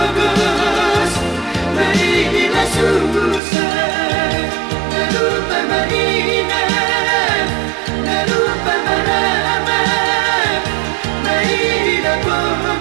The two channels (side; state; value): left; drops out; at 3.4 s